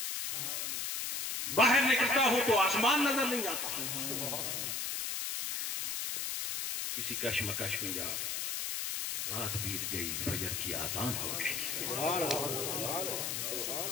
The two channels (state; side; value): noise; left; hiss, 2 dB below the sound